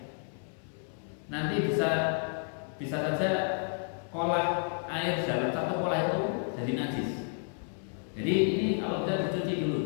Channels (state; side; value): silent; right; 57 dB below the other